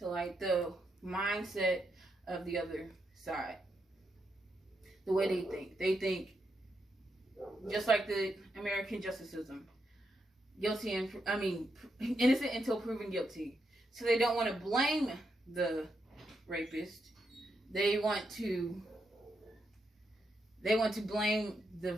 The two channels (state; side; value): normal; both; correlation 0.82